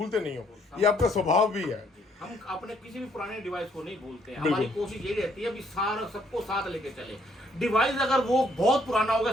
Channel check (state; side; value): normal; both; correlation 0.67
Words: नहीं हो, ये आपका स्वभाव भी है। हम अपने किसी भी पुराने डिवाइस को नहीं भूलते हैं। हमारी कोशिश ये रहती है, सारा सबको साथ लेके चले। डिवाइस अगर वो बहुत पुराना होगा,